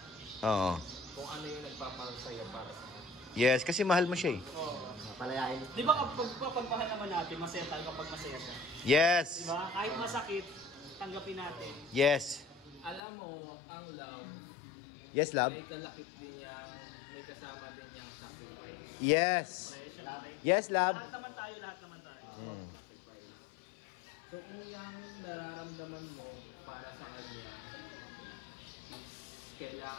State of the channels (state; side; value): drops out; right; at 13.0 s